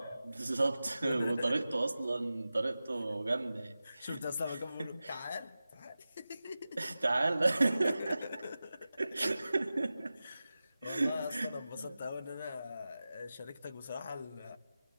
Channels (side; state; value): both; inverted; correlation -0.95